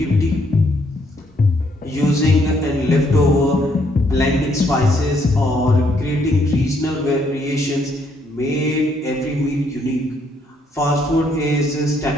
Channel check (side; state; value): both; normal; correlation 0.71